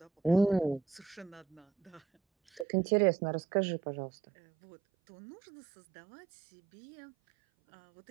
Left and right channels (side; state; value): left; drops out; at 2.7 s